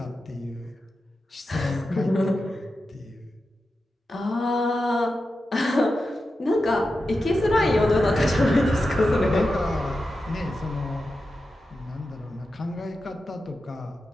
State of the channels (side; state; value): both; normal; correlation 0.90